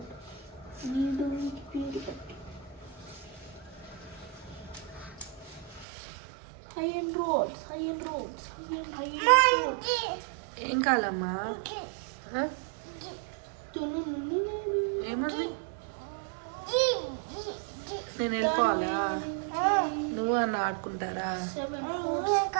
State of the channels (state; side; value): drops out; left; at 5.9 s